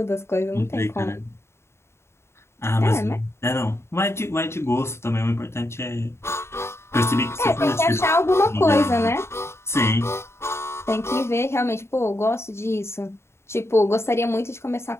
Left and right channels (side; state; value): right; late; 0.13 ms